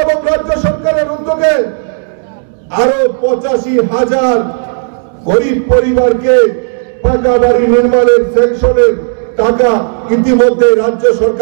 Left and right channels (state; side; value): silent; left; digital silence